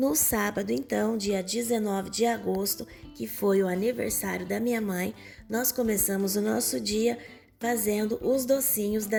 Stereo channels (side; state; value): both; identical; correlation 1.00